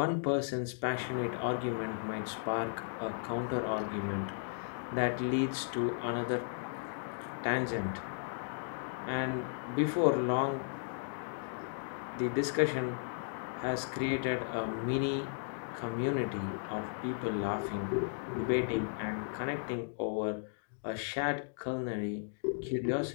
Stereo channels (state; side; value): silent; right; digital silence